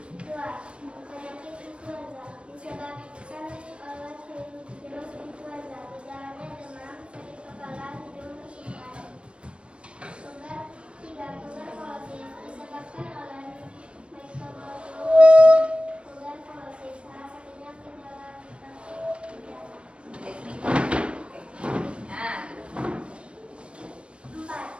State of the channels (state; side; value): late; left; 0.058 ms